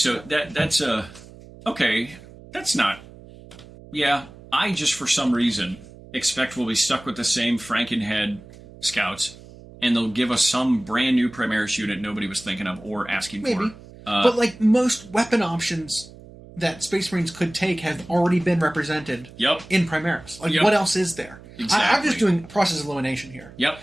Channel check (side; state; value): right; noise; hum, 19 dB below the sound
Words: that's okay. That's not. Yeah, I just for some reason expect we'll be stuck with the same Frankenhead scouts, and they'll give us some brand new Primaris unit nobody was thinking of or asking for. But like most weapon options that Space Marines could take have already been represented. In Primaris. Like what else is there? Exactly. I'm just doing process elimination here.